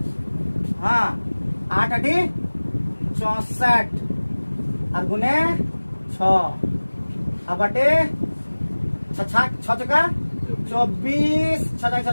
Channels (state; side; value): inverted; both; correlation -1.00